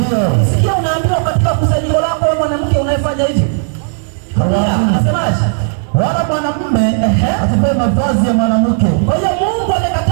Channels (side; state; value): left; silent; digital silence